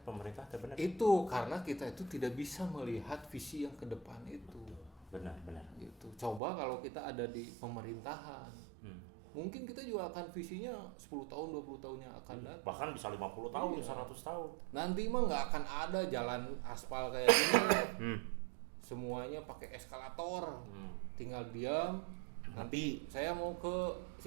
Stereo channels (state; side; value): drops out; left; at 6.4 s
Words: pemerintah, benar. Itu karena kita itu tidak bisa melihat visi yang ke depan itu. Benar. Gitu. Coba kalau kita ada di pemerintahan, mungkin kita juga akan visinya 10 tahun, 20 tahun yang akan datang. Bahkan bisa 50 tahun, 100 tahun. Nanti mah nggak akan ada jalan aspal kayak gini. Semuanya pakai eskalator, tinggal diam. Nanti saya mau ke